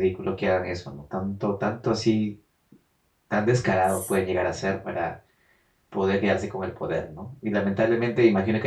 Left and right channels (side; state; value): both; identical; correlation 1.00